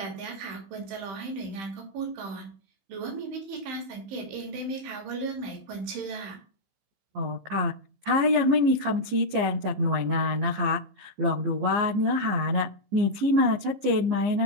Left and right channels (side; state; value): left; late; 15 ms